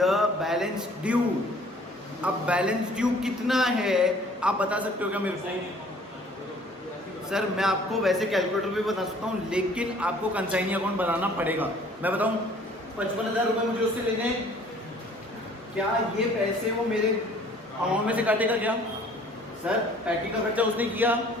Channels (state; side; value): normal; both; correlation 0.54